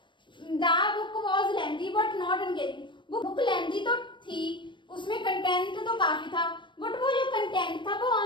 The book was lengthy but not engaging, book lengthy तो थी, उसमें कंटेंट तो काफी था, बट वो जो कंटेंट था वो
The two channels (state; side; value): late; right; 0.23 ms